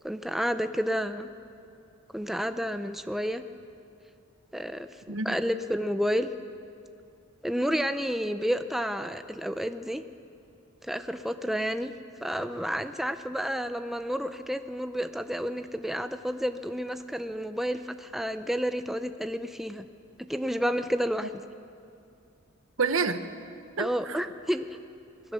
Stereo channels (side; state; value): both; normal; correlation 0.82